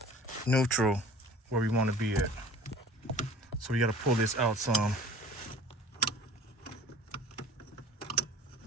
neutral, where we want to be at. So we got to pull this out some.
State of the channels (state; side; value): normal; both; correlation 0.45